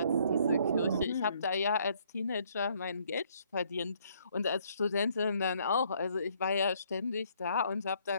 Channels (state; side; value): inverted; both; correlation -0.66